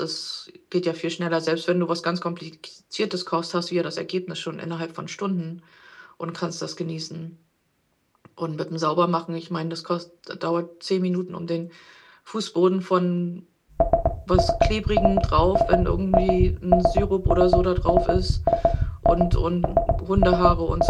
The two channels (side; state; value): both; identical; correlation 1.00